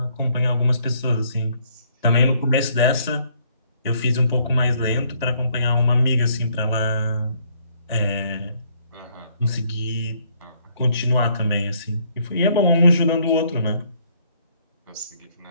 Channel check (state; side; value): inverted; both; correlation -0.67